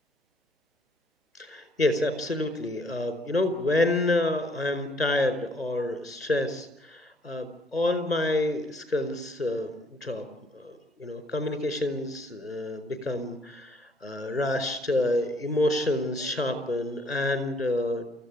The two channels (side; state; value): both; normal; correlation 0.64